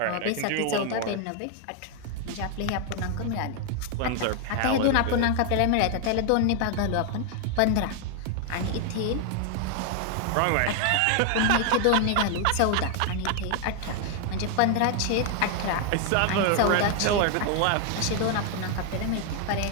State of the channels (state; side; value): different; both; correlation 0.00